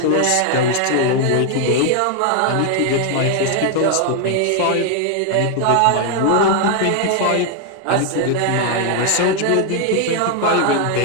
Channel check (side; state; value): both; different; correlation 0.00